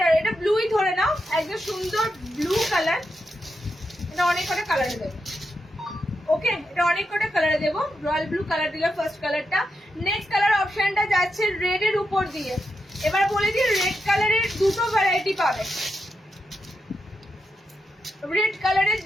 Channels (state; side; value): normal; both; correlation 0.86